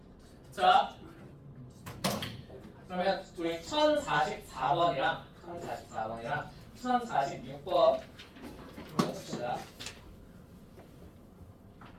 자, 그러면 우리 1044번이랑 1046번 해봅시다.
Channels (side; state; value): both; identical; correlation 1.00